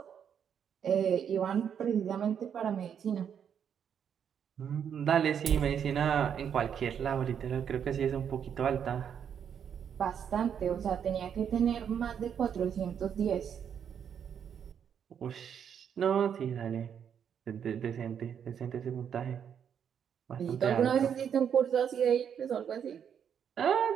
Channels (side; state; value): left; quieter; 8.1 dB